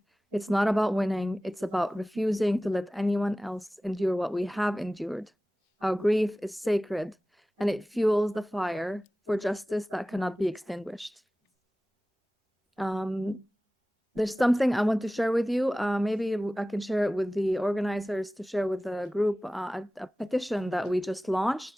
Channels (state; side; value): normal; both; correlation 0.98